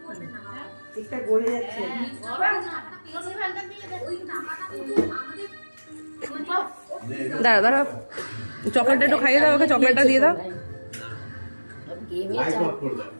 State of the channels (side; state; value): both; inverted; correlation -1.00